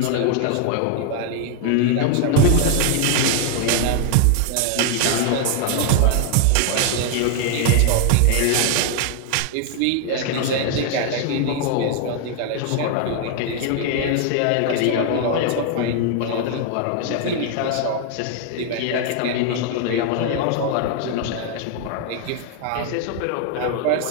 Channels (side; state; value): both; different; correlation 0.00